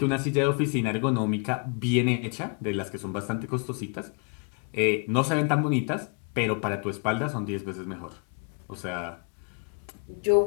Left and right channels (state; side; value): quieter; right; 38.5 dB